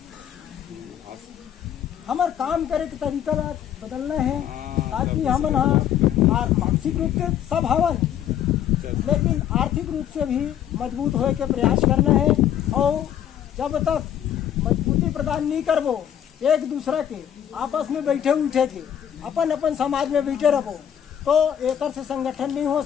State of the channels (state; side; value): quieter; right; 10.0 dB